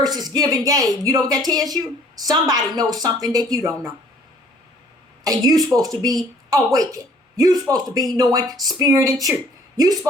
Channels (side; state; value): both; normal; correlation 0.56